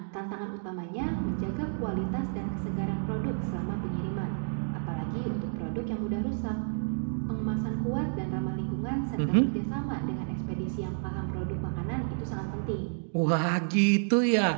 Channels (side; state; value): left; silent; digital silence